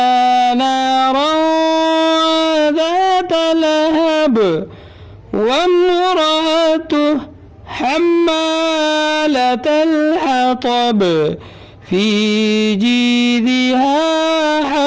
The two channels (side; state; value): both; identical; correlation 1.00